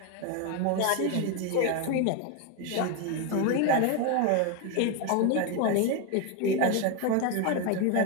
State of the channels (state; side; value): different; both; correlation 0.01